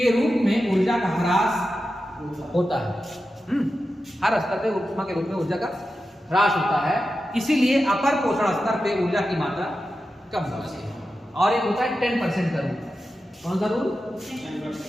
रूप में ऊर्जा का ह्रास होता है। हर स्तर पे ऊष्मा के रूप में ऊर्जा का ह्रास होता है, इसीलिए अपर पोषण स्तर पे ऊर्जा की मात्रा कम होती है। और एक होता है 10% का रूल। कौन सा रूल?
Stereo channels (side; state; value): both; normal; correlation 0.91